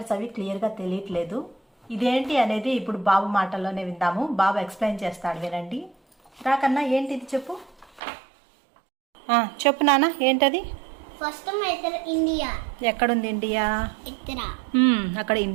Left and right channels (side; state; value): left; drops out; at 8.0 s